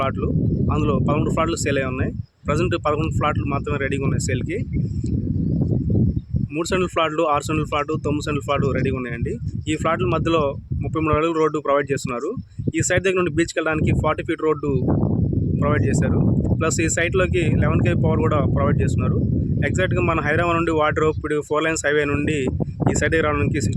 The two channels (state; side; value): identical; both; correlation 1.00